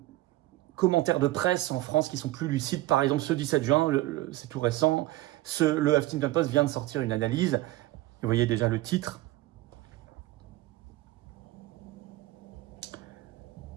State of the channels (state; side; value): quieter; left; 17.1 dB